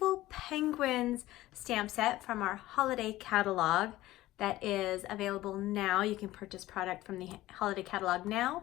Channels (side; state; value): right; quieter; 16.4 dB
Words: Penguins stamp set from our holiday catalog that is available now. You can purchase product from the holiday catalog